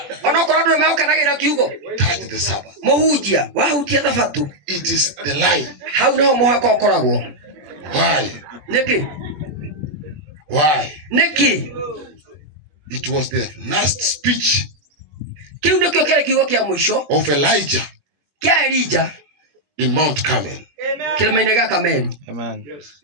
ona korwo ndu mekanagira kiugo, touch the Sabbath. Mohunjia wahunjia thabato. It is the line. Hau no muhaka ukoragwo. Why? Niki? Why? Niki? It was the last speech Kiu ndikio kile kiugo kia mwisho of Elijah kia Elijah in Mount Carmel. Kilima-ini gya Kameli. Amen.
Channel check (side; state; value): left; late; 20 ms